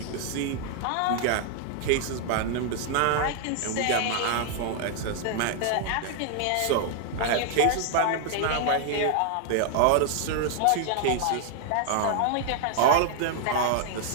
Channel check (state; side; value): different; both; correlation -0.01